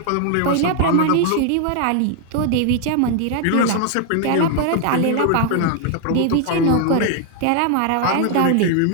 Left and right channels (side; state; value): both; different; correlation 0.00